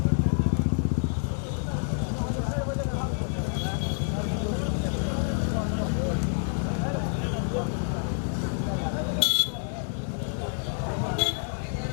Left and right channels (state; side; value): silent; right; 59 dB below the other